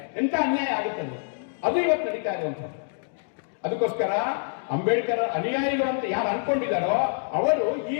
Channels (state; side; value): silent; right; digital silence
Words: ಎಂತ ಅನ್ಯಾಯ ಆಗುತ್ತೆ ಅದು ಇವತ್ತು ನಡೀತಾ ಇರುವಂಥದ್ದು. ಅದಕ್ಕೋಸ್ಕರ ಅಂಬೇಡ್ಕರ್ ಅನುಯಾಯಿಗಳು ಅಂತ ಯಾರು ಅನ್ಕೊಂಡಿದ್ದಾರೋ ಅವರು ಈ